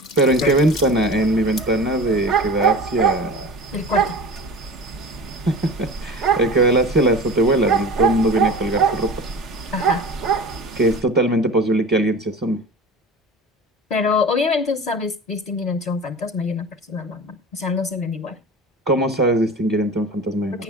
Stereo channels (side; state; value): both; normal; correlation 0.36